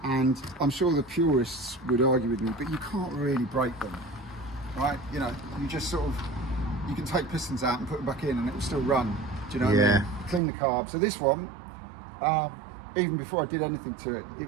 and I'm sure the purists would argue with me, but you can't really break them, right? You know, you just sort of, you can take pistons out and put them back in, and it will still run. Do you know what I mean? Clean the carb. So this one, even before I did anything to it, it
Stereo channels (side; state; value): left; drops out; at 10.4 s